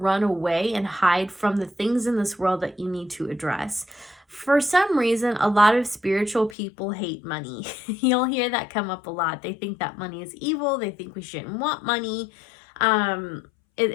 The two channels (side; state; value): right; drops out; at 6.6 s